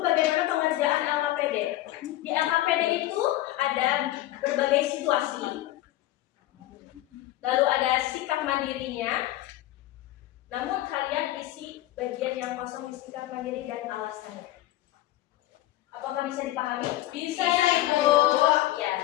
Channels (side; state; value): right; quieter; 15.6 dB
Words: bagaimana pengerjaan LKPD. Di LKPD itu ada berbagai situasi. Lalu ada sikap mandirinya. Namun kalian isi bagian yang kosong. kosong di sikap mandiri dan alasannya. Apakah bisa dipahami? Bisa ya, Ibu.